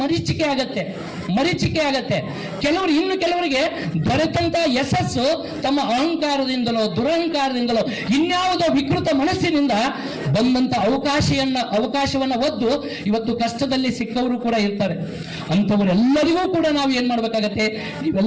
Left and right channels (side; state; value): both; identical; correlation 1.00